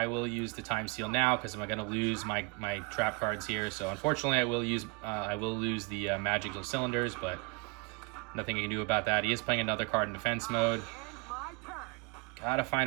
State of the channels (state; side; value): quieter; left; 30.4 dB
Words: will use the Time Seal now because I'm going to lose my trap cards here. So unfortunately, I will lose the Magical Cylinders, but nothing I can do about that. He is playing another card in defense mode. Gotta